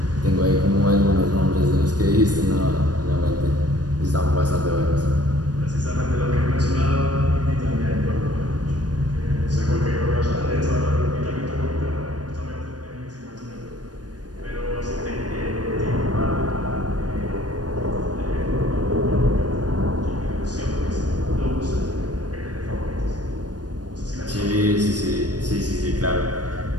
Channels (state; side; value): late; left; 0.69 ms